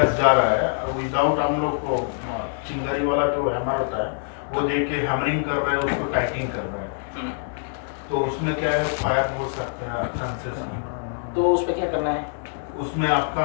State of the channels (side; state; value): right; silent; digital silence